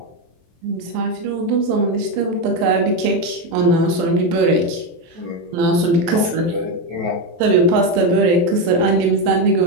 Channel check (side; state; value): left; late; 23 ms